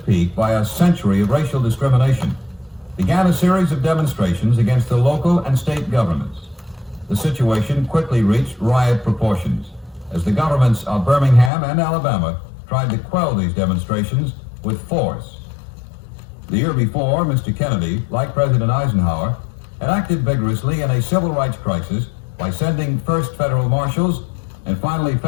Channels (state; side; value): drops out; right; at 11.5 s